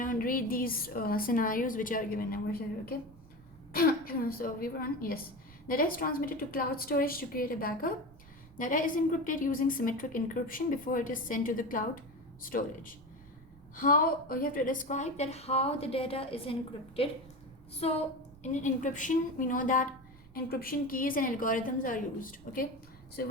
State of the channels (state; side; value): noise; right; rumble, 22 dB below the sound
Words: these scenarios which are given over here. Okay. So we were on, yes. Data is transmitted to cloud storage to create a backup. Data is encrypted using symmetric encryption before it is sent to the cloud storage. How you have to describe that how the data is encrypted. So in encryption, we know that encryption keys and algorithms are used. Okay, so